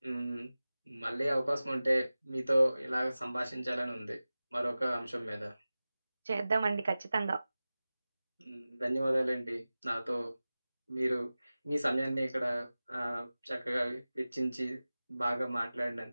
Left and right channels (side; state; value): both; inverted; correlation -0.97